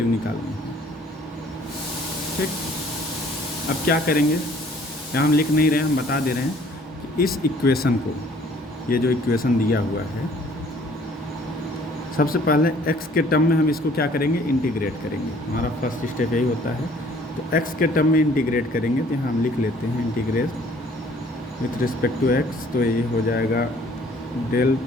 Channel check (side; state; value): both; normal; correlation 0.57